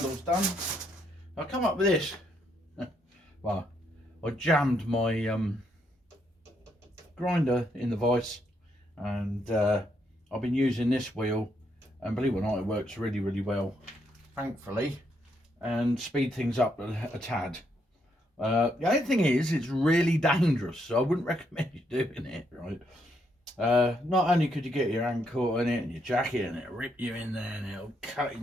done. I come up with this. Well, I jammed my grinder in the vise, and I've been using this wheel, and believe it or not, it works really, really well, thankfully, and speed things up a tad. The only thing is, it's really dangerous, so I wouldn't recommend you doing it, right? Not only could you get your hand caught in it and your jacket, and it'll rip you in there, and it'll cut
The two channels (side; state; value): both; normal; correlation 0.76